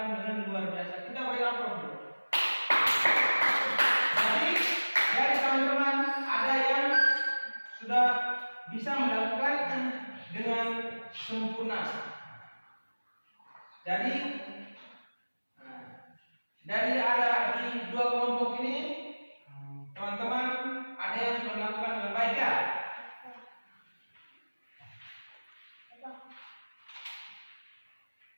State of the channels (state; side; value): inverted; both; correlation -1.00